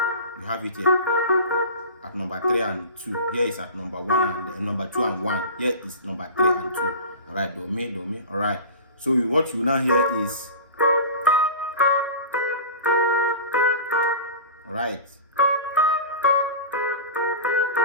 have it here at number 3 and 2. Here is at number 1 and number 2 and 1. Here is number 3 and 2. All right, do me. All right. So what you now hear is, all right.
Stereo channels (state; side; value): inverted; both; correlation -0.33